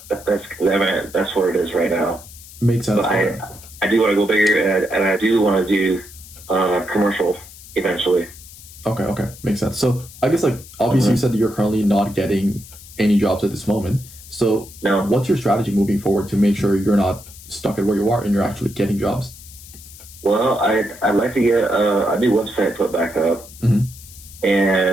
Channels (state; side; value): noise; left; hiss, 18 dB below the sound